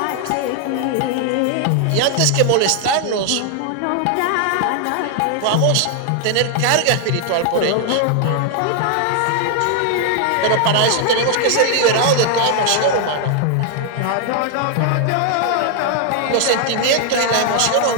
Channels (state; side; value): different; both; correlation 0.00